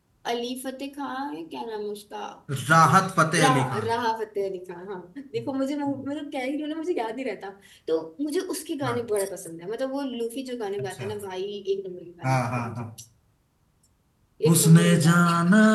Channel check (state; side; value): identical; both; correlation 1.00